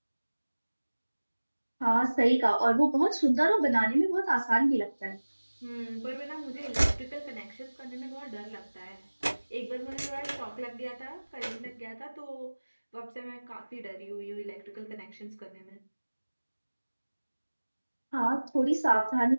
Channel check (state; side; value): inverted; both; correlation -1.00